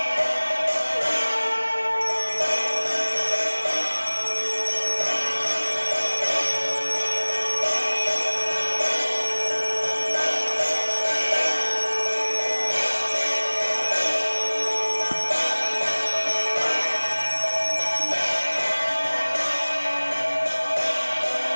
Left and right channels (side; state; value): both; inverted; correlation -1.00